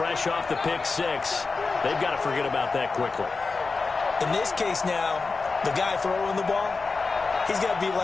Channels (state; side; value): quieter; right; 4.2 dB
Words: off the pick six, they've got to forget about that quickly. In this case now, the guy throwing the ball, he's got to be